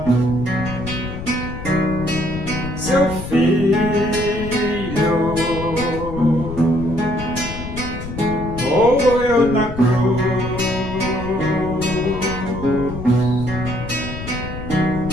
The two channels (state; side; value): noise; left; rumble, 8 dB below the sound